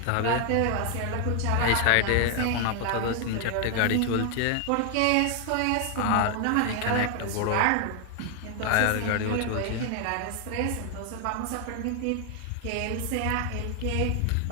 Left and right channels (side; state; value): both; different; correlation 0.00